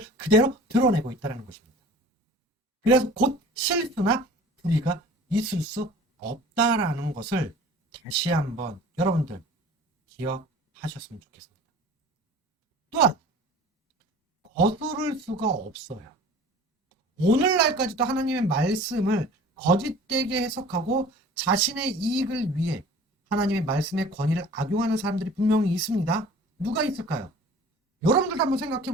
그대로 드러내고 있다는 것입니다. 그래서 곧 실수나 불의가 있을 수 없다라는 것을 다시 한번 여러분들 기억하셨으면 좋겠습니다. 또한 거스를 수가 없어요. 오늘날까지도 하나님의 말씀을 거짓되게 해석하고 자신의 이익을 위해 하나님의 말씀의 권위를 악용하는 사람들이 분명히 있습니다. 누가 있을까요? 여러분들도 한번 생각해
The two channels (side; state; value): both; normal; correlation 0.45